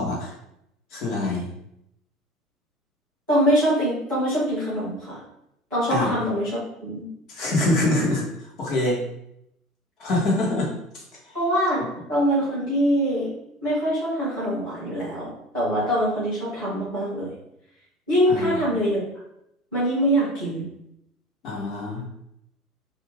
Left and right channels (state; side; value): normal; both; correlation 0.39